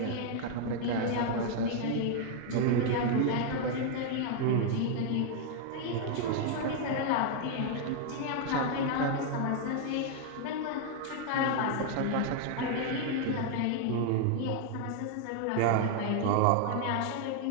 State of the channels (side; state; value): both; different; correlation 0.00